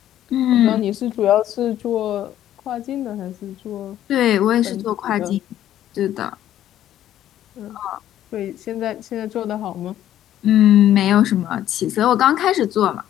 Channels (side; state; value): right; quieter; 11.9 dB